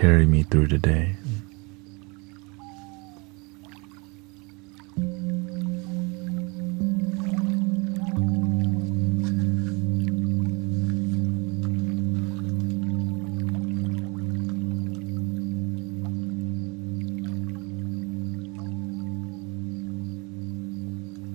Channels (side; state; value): left; quieter; 28.8 dB